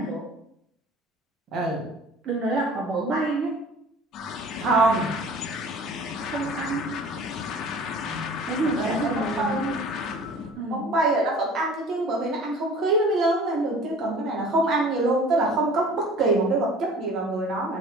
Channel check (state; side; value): normal; both; correlation 0.45